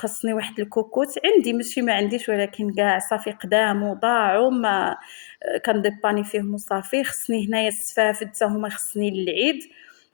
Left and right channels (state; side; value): silent; right; digital silence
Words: واحد الكوكوت عندي، ماشي ما عنديش، ولكن كاع صافي قدام وضاعوا ما كنديباني فيهم وصافي. خصني هنايا السفافد حتى هما خصني للعيد.